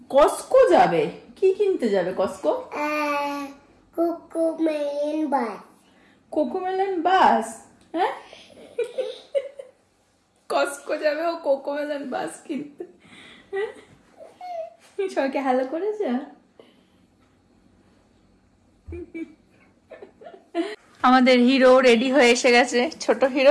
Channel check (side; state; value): both; identical; correlation 1.00